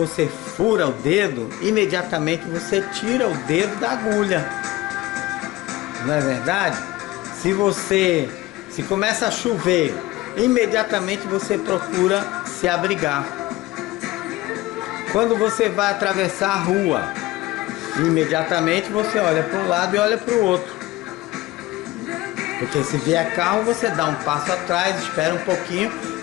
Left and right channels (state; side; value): quieter; right; 18.5 dB